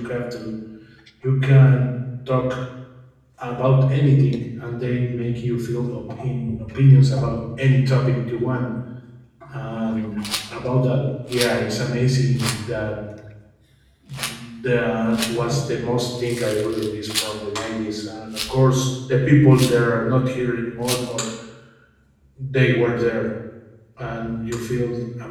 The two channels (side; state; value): both; identical; correlation 1.00